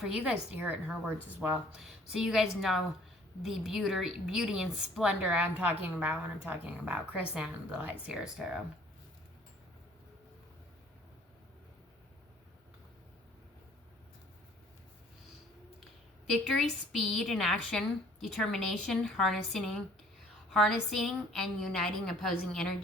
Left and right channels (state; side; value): normal; both; correlation 0.56